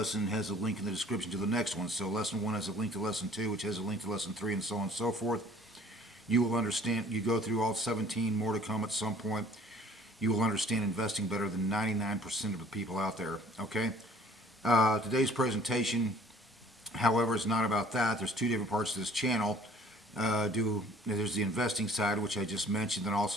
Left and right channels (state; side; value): normal; both; correlation 0.53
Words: has a link in the description to the next one. So lesson 1 has a link to lesson 2, which has a link to lesson 3, and so on and so forth. You will understand, you go through all 17, more to come at some point. You will understand investing better than 99% of the people out there, okay? Today's presentation, however, is not about that. There's two different parts to this channel. There's the investing side, which I just mentioned, and